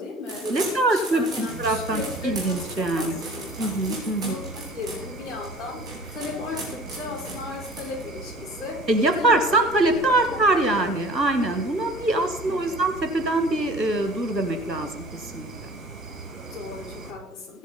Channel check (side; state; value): both; normal; correlation 0.46